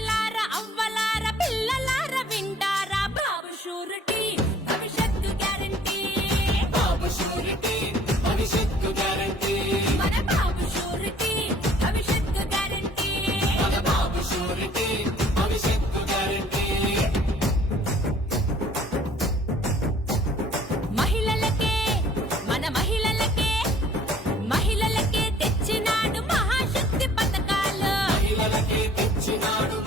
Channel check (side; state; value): both; normal; correlation 0.56